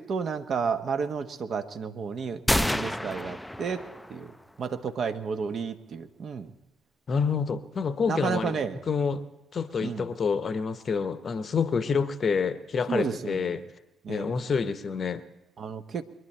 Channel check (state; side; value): normal; both; correlation 0.78